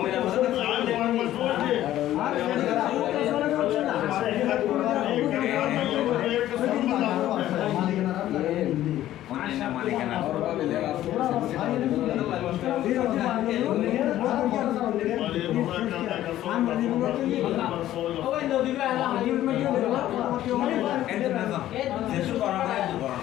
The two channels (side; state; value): right; quieter; 13.4 dB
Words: মালিকানা ওই নদী বে আলা হাজির মে যেসু করা হয়